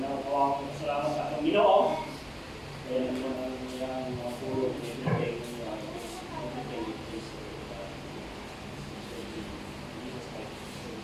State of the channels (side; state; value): both; identical; correlation 1.00